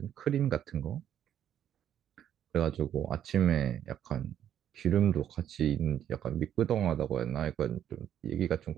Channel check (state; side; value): quieter; left; 10.3 dB